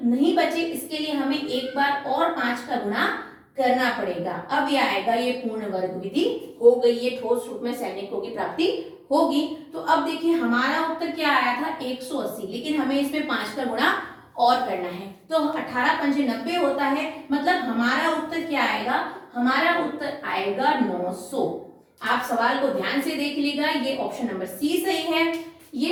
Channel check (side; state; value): both; identical; correlation 1.00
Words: नहीं बचे, इसके लिए हमें एक बार और 5 का गुणा करना पड़ेगा। अब ये आएगा, ये पूर्ण वर्ग विधि हो गई, ये ठोस रूप में सैनिकों की प्राप्ति होगी। तो अब देखिए हमारा उत्तर क्या आया था 180, लेकिन हमें इसमें 5 का गुणा और करना है। तो 18 पंजे 90 होता है, मतलब हमारा उत्तर क्या आएगा, हमारा उत्तर आएगा 900। आप सवाल को ध्यान से देख लीजिएगा, ये ऑप्शन नंबर सी सही है।